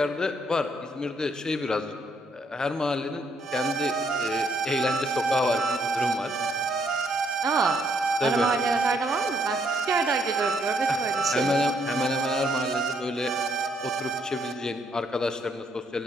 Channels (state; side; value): normal; both; correlation 0.71